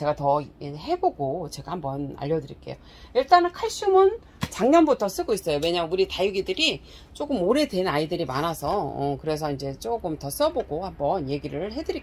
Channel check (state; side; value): identical; both; correlation 1.00